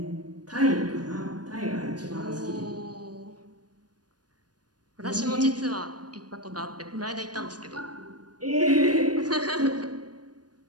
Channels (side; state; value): left; late; 0.69 ms